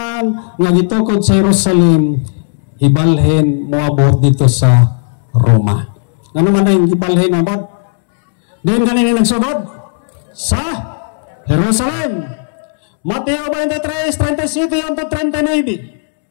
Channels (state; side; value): silent; right; digital silence